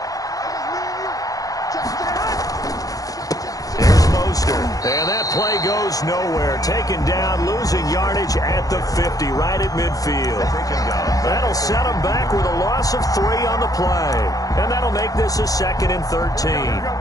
And that play goes nowhere. Taken down, losing yardage at the 50, right at midfield. That'll set them back with a loss of 3 on the play. And that'll make this a 2nd and 13.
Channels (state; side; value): late; right; 0.17 ms